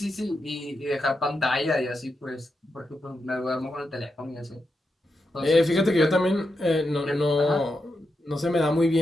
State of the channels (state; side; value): normal; both; correlation 0.86